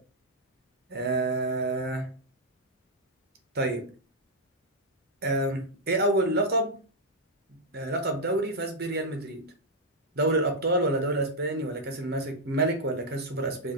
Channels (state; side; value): normal; both; correlation -0.04